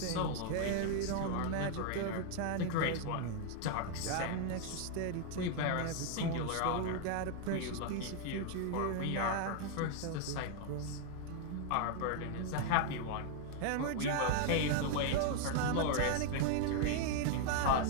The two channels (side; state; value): both; different; correlation 0.00